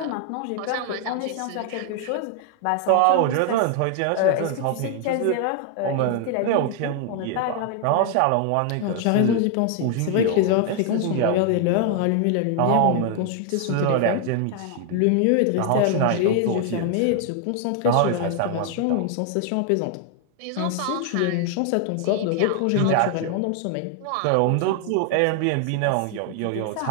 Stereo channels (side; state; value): both; different; correlation 0.00